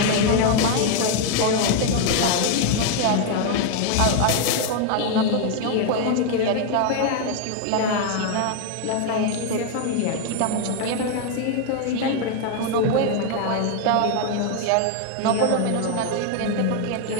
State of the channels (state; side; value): different; both; correlation 0.00